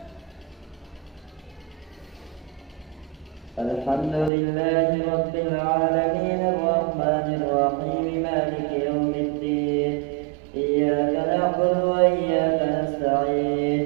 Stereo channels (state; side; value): drops out; left; at 4.3 s